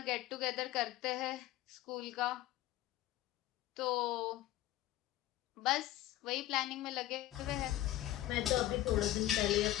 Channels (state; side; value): quieter; right; 14.7 dB